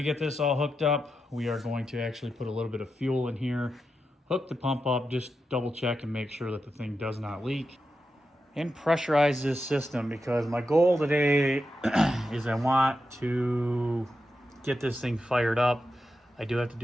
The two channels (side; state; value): both; normal; correlation 0.88